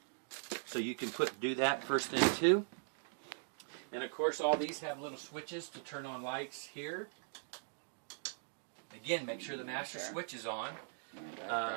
So you can do that first thing too. And of course all these have little switches to turn on lights here. Again, make sure the master switch is on.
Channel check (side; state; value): left; silent; digital silence